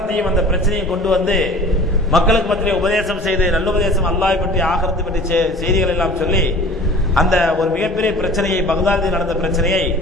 அந்த பிரச்சனையும் கொண்டு வந்து மக்களுக்கு மத்தியிலே உபதேசம் செய்து, நல்லுபதேசம், அல்லாஹ்வை பற்றி ஆகிரத்தை பற்றி செய்திகள் எல்லாம் சொல்லி அந்த ஒரு மிகப்பெரிய பிரச்சனையை, பக்தாதில் நடந்த பிரச்சனையை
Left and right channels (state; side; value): normal; both; correlation 0.44